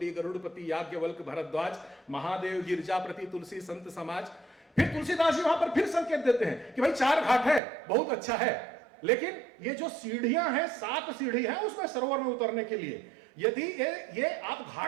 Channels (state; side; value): drops out; left; at 7.6 s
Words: गरुड़पति याज्ञवल्क्य भरद्वाज, महादेव गिरजापति तुलसी संत समाज। फिर तुलसीदास जी वहां पर फिर संकेत देते हैं कि भाई 4 घाट है, बहुत अच्छा है, लेकिन ये जो सीढ़ियां हैं, 7 सीढ़ी हैं उसमें सरोवर में उतरने के लिए, यदि ये आप